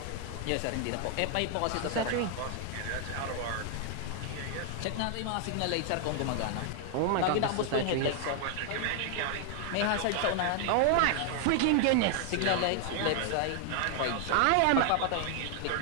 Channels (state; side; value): different; both; correlation 0.00